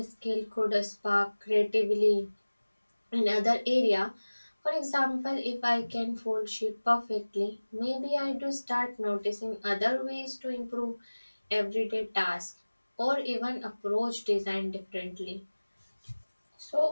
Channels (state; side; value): inverted; both; correlation -1.00